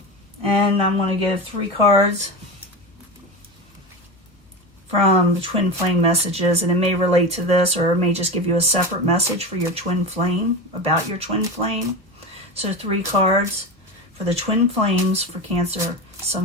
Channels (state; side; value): normal; both; correlation 0.23